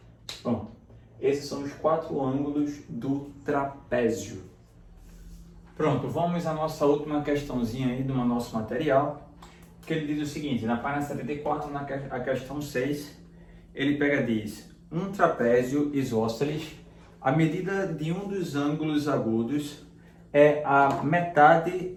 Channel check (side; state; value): both; identical; correlation 1.00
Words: Pronto. Esses são os 4 ângulos do trapézio. Pronto, vamos à nossa última questãozinha aí do nosso material, que ele diz o seguinte, na página 74, a questão 6, ele diz, um trapézio isósceles, a medida de um dos ângulos agudos é a metade